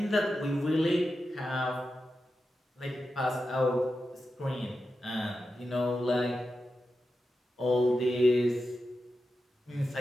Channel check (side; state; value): both; normal; correlation 0.90